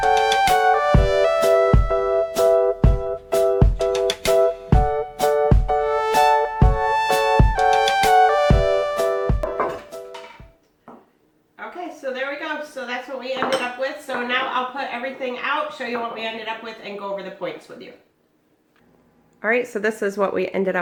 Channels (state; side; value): identical; both; correlation 1.00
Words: So there we go. So that's what we ended up with. So now I'll put everything out, show you what we ended up with, and go over the points with you. All right, so this is what we ended